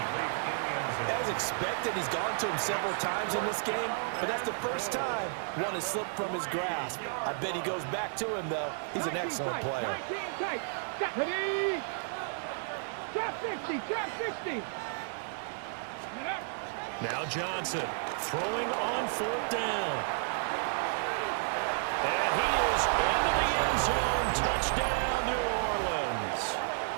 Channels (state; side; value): silent; left; 56 dB below the other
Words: As expected, he's gone to him several times in this game, but that's the first time one has slipped from his grasp. I bet he goes back to him, though. He's an excellent player. 19 tight. Ready? Top 60. Top 60. Now Johnson throwing on 4th down. And he is into the end zone. Touchdown, New Orleans.